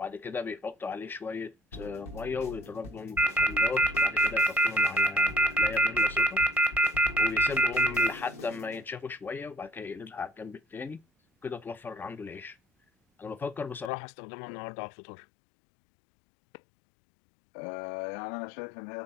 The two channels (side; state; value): right; drops out; at 13.9 s